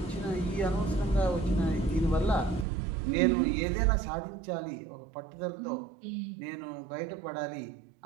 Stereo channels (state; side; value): drops out; left; at 2.7 s